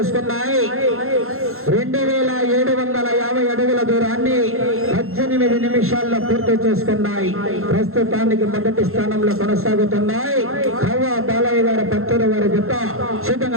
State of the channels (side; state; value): left; late; 0.62 ms